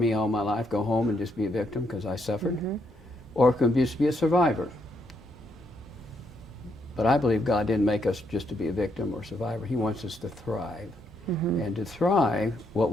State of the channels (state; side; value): normal; both; correlation 0.76